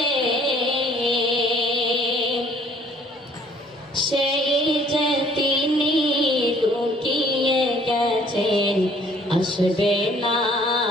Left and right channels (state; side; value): normal; both; correlation 0.59